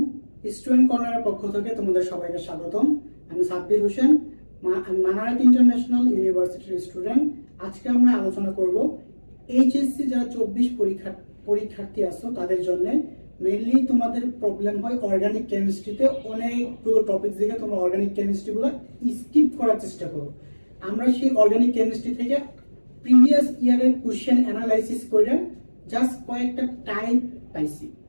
স্টুডেন্ট কর্নারের পক্ষ থেকে তোমাদের সবাইকে স্বাগতম। আমি সাব্বির হোসেন, মানারাত ইন্টারন্যাশনাল ইউনিভার্সিটির স্টুডেন্ট। আজকে আমরা আলোচনা করব এইচএসসি যারা 24 পরীক্ষার্থী আছো তাদের জন্য। মেইনলি তোমাদের প্রবলেম হয় অর্গানিক কেমিস্ট্রিতে, অনেকগুলো টপিক থেকে তোমরা অর্গানিক কেমিস্ট্রিগুলো স্কিপ করার চেষ্টা করো। আমরা সেই অর্গানিক কেমিস্ট্রি থেকে প্রিভিয়াস ইয়ারের কোশ্চেন অ্যানালাইসিস করে জাস্ট কয়েকটা টাইপ পাইছি।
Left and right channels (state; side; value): inverted; both; correlation -1.00